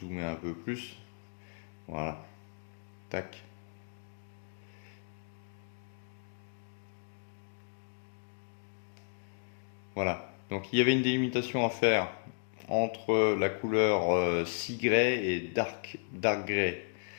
un peu plus, voilà, tac. Voilà, donc il y avait une délimitation à faire entre la couleur Sea et dark grey.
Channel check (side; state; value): right; silent; digital silence